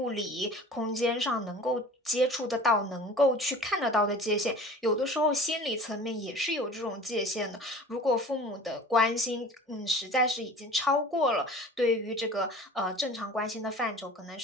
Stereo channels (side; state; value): both; normal; correlation 0.42